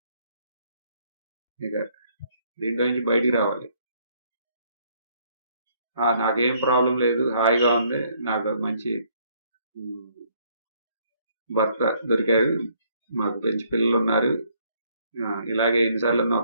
ఇక దీంట్లో నుంచి బయటికి రావాలి. నాకేం ప్రాబ్లం లేదు, హాయిగా ఉంది, నాకు మంచి భర్త దొరికారు, మాకు మంచి పిల్లలు ఉన్నారు, ఇలాగే ఎన్నిసార్లు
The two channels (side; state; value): both; inverted; correlation -0.67